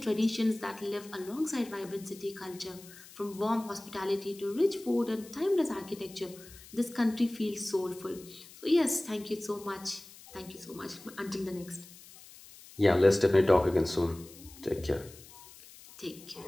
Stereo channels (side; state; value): left; noise; hiss, 20 dB below the sound